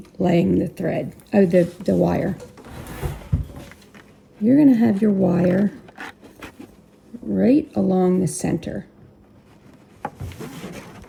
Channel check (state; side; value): identical; both; correlation 1.00